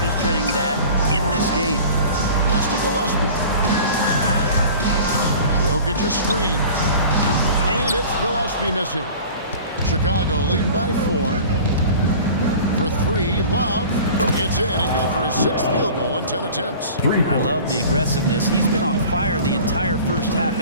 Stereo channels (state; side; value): inverted; both; correlation -0.42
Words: that in this game. Pass to Gillespie. Jokic a screen. And it's Gillespie missing. Chicago leading by 4. For 3, Love. It's in and good for his 6th field goal in 10 attempts. I love the aggressiveness. He's been on fire the entire first half